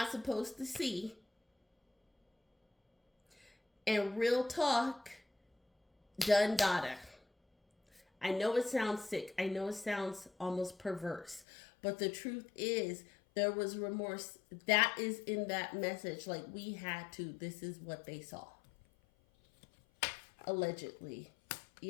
supposed to see. And real talk, done data. I know it sounds sick. I know it sounds almost perverse. But the truth is, there was remorse. That is in that message. Like, we had to. This is what they saw. Allegedly.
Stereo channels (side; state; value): right; drops out; at 11.5 s